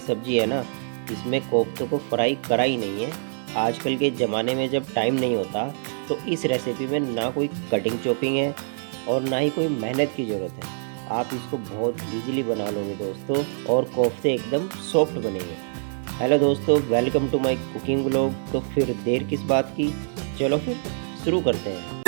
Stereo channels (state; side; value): silent; left; 62 dB below the other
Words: है ना, इसमें कोफ्तों को फ्राई करा ही नहीं है। आजकल के ज़माने में जब टाइम नहीं होता, तो इस रेसिपी में ना कोई कटिंग चॉपिंग है और ना ही कोई मेहनत की ज़रूरत है। आप इसको बहुत ईज़िली बना लोगे दोस्तों, और कोफ्ते एकदम सॉफ्ट बनेंगे। हेलो दोस्तों, welcome to my cooking vlog. तो फिर देर किस बात की, चलो फिर शुरू करते हैं।